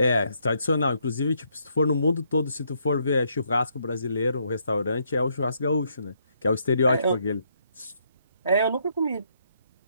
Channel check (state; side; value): inverted; both; correlation -0.73